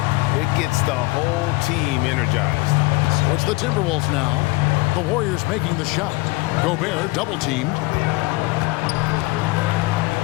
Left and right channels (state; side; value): quieter; right; 22.3 dB